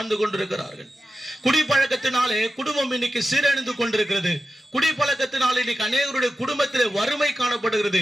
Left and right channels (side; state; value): both; normal; correlation 0.92